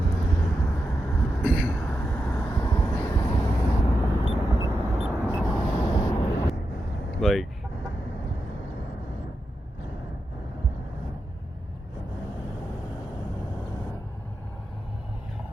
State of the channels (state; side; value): normal; both; correlation 0.88